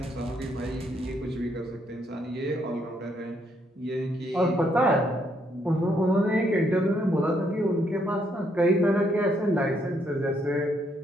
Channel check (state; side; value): normal; both; correlation 0.73